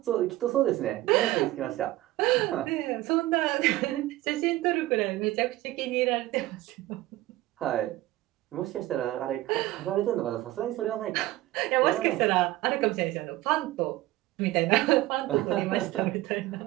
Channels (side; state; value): left; quieter; 17.0 dB